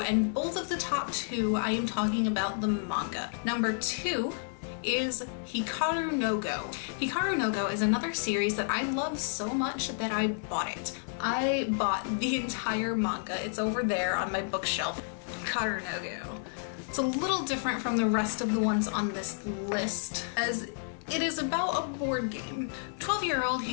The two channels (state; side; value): silent; right; digital silence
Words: both of the top 2, I am talking about the manga. Number 2 is Hikaru no Go. Hikaru no Go is another series that I love so much that I bought it. I bought the entire manga. It's over there on my bookshelf. Hikaru no Go. It's a little different from the rest of the ones on this list, as it is about a board game. 12-year-old